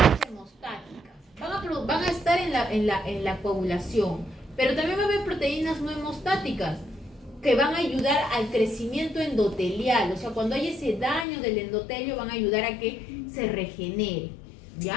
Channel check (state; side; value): drops out; right; at 11.2 s